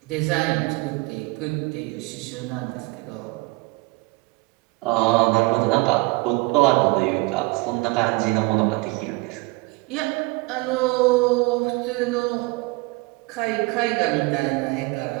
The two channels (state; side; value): quieter; left; 24.4 dB